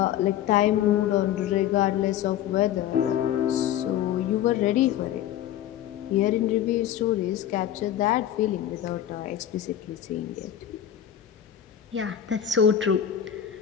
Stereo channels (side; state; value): right; quieter; 10.8 dB